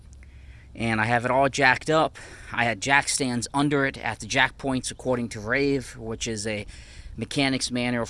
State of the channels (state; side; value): identical; both; correlation 1.00